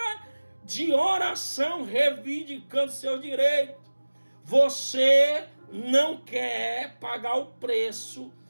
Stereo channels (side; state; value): both; inverted; correlation -1.00